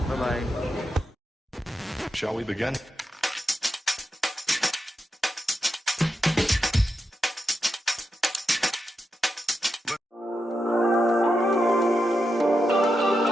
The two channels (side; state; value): both; normal; correlation 0.87